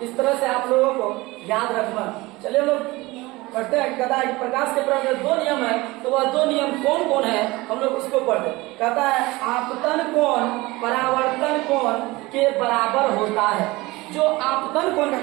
इस तरह से आप लोगों को याद रखना। चलिए लोग पढ़ते हैं, कहता है कि प्रकाश के प्रवाह में दो नियम है, तो वह दो नियम कौन कौन है हम लोग उसको पढ़ते हैं। कहता है आपतन कोण परावर्तन कोण के बराबर होता है। जो आपतन कोण का,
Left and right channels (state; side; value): quieter; left; 21.3 dB